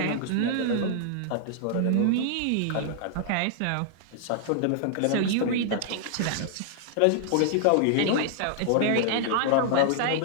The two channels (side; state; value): both; different; correlation -0.01